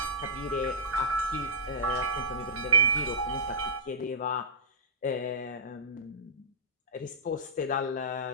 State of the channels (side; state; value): both; normal; correlation -0.15